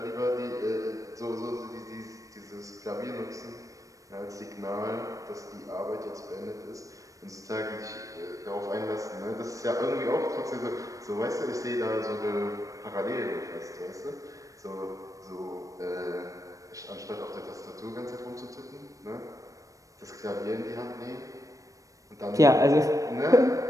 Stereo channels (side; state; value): left; late; 0.16 ms